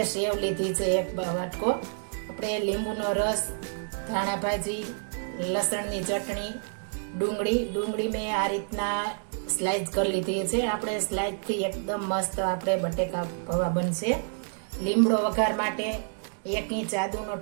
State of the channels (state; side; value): silent; left; digital silence